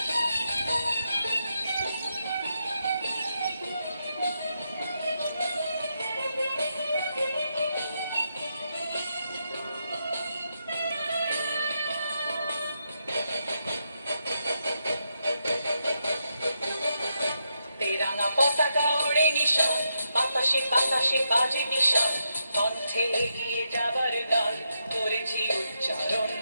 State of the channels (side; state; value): both; inverted; correlation -0.82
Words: বাতাসে বাতাসে বাজে নিশান, কণ্ঠে এগিয়ে যাবার গান করেছি উচ্চারণ।